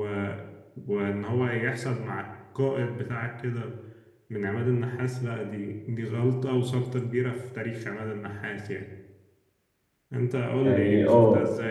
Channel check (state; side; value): identical; both; correlation 1.00